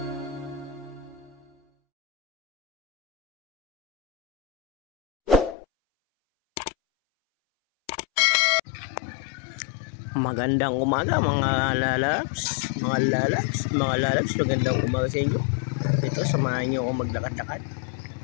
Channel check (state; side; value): drops out; right; at 5.6 s